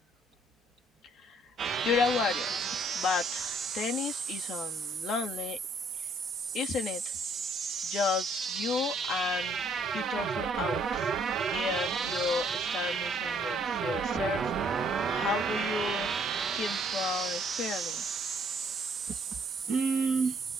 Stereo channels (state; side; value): normal; both; correlation 0.64